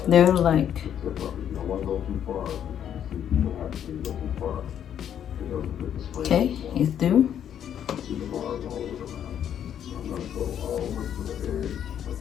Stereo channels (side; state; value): right; quieter; 9.5 dB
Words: They're like okay, it's through.